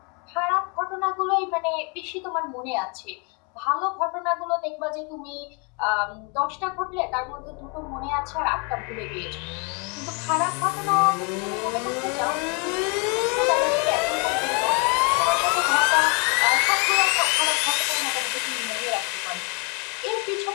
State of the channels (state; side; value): quieter; right; 33.6 dB